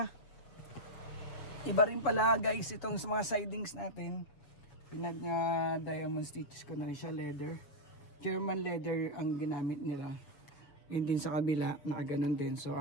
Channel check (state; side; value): late; right; 7.2 ms